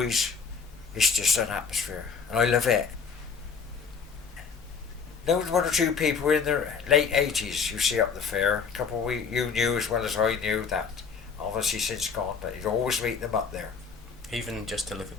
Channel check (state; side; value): quieter; right; 5.9 dB